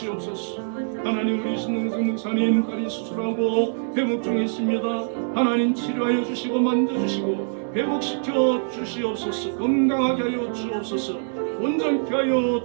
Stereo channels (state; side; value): silent; left; digital silence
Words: 하나님 우리 신능성 목사님 다리 수술하고 회복 중에 있습니다. 하나님 치료하여 주시고 만져주시고 회복시켜 주시옵소서. 건강하게 하여 주옵소서. 온전케 하여